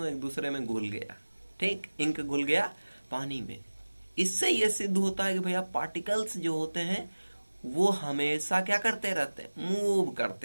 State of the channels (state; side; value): inverted; both; correlation -1.00